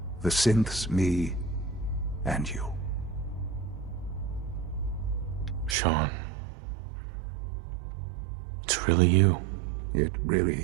The synths, me, and you. Sean. It's really you. It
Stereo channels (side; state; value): left; drops out; at 5.8 s